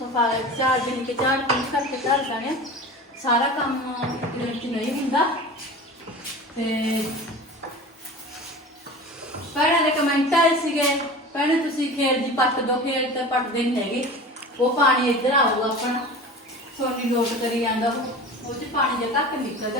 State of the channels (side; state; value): both; normal; correlation 0.35